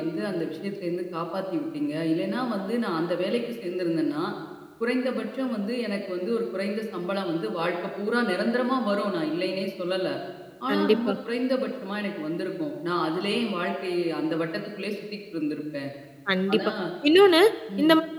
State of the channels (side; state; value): both; identical; correlation 1.00